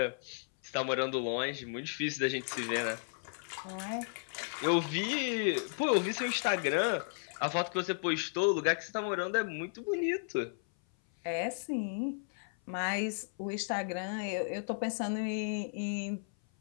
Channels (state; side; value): silent; right; 55 dB below the other